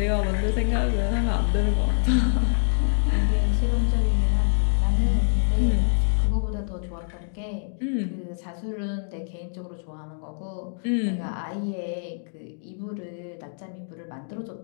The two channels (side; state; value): right; silent; digital silence